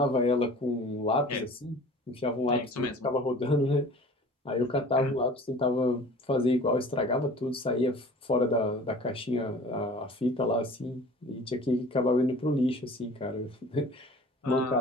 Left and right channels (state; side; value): normal; both; correlation 0.45